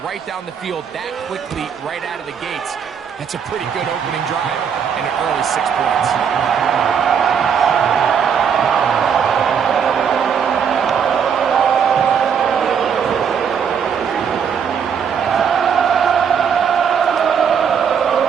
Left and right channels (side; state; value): left; quieter; 7.2 dB